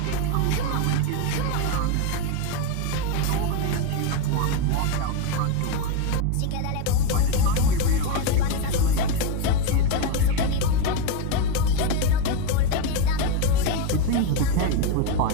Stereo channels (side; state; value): both; different; correlation 0.03